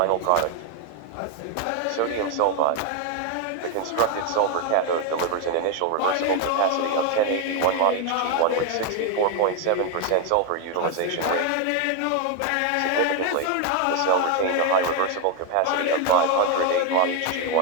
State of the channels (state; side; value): different; both; correlation 0.01